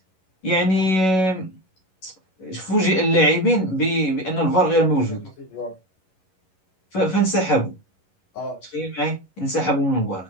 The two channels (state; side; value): late; right; 11 ms